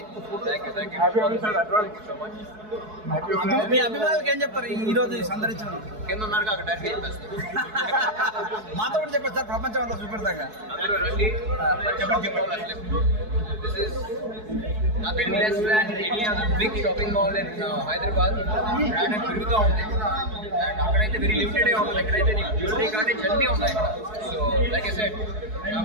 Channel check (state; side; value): late; left; 4.7 ms